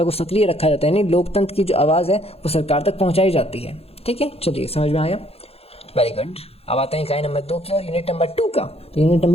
को सक्रिय रखा जाता है, यानी लोकतंत्र की जो आवाज़ है वो सरकार तक पहुंचाई जाती है, ठीक है। चलिए, समझ में आया? Very good. अब आते हैं इकाई नंबर 2 की और यूनिट नंबर 2 का। तो यूनिट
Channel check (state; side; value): late; right; 0.29 ms